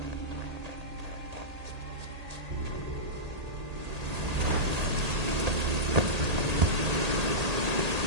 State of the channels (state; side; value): late; left; 1.8 ms